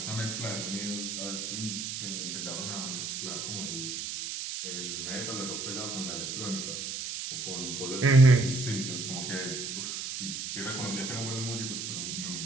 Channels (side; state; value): right; noise; hiss, 4 dB below the sound